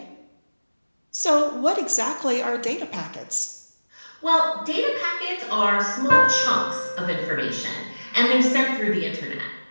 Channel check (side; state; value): both; inverted; correlation -1.00